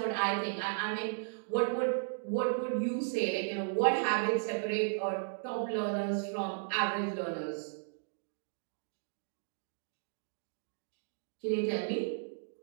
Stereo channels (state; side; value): silent; left; digital silence